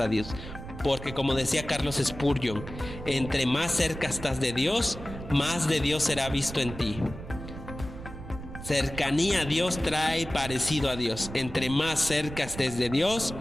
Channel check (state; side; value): noise; right; rumble, 11 dB below the sound